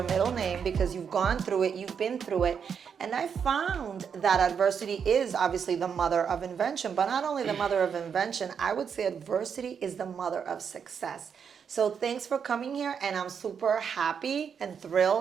middle name because you've gone through it, you've been through it. And I found that adversity is obviously the mother of invention, but not only the mother of invention, I would say adversity is the mother of success. So thanks for coming here, and I'm super happy and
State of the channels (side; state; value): left; quieter; 7.0 dB